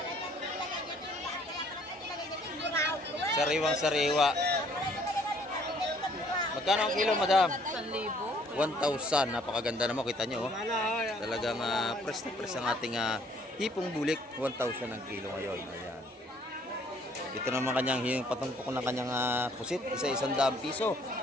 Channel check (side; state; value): both; normal; correlation 0.61